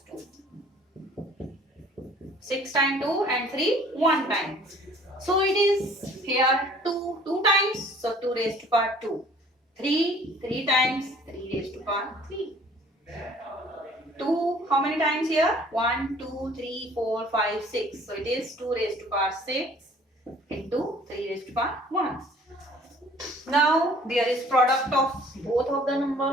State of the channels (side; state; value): both; normal; correlation 0.54